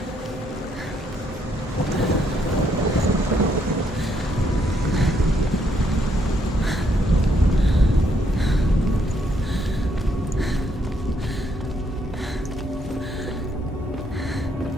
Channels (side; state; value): both; normal; correlation 0.73